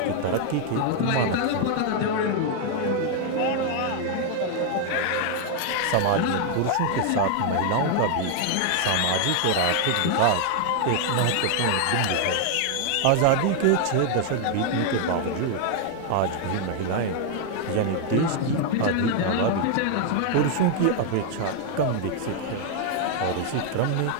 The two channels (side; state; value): both; different; correlation 0.00